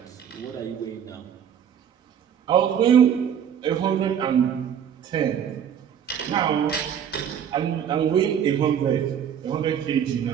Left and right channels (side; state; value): left; quieter; 8.6 dB